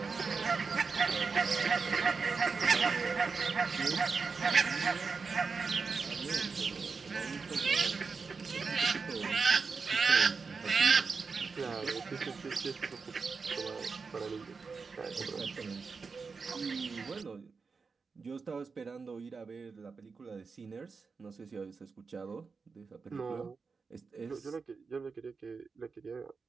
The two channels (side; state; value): left; quieter; 4.9 dB